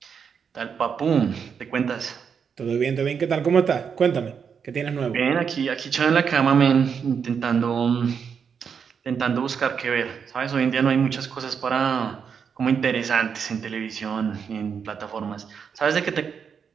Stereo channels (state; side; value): quieter; left; 6.7 dB